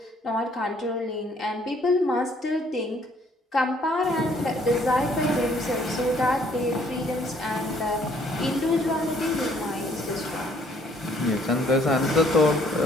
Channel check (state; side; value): normal; both; correlation 0.63